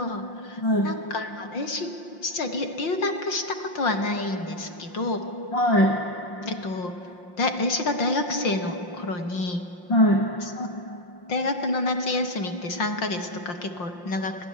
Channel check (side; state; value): right; late; 5.7 ms